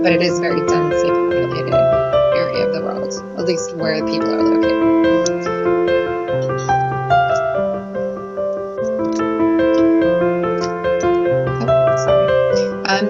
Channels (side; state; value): both; identical; correlation 1.00